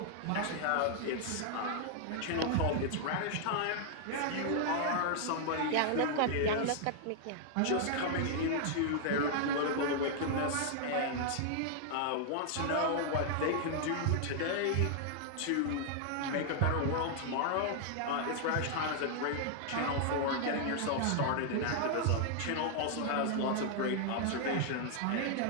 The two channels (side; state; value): both; different; correlation -0.01